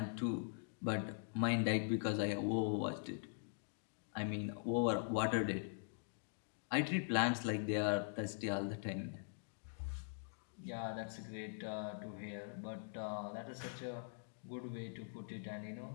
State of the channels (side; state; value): right; silent; digital silence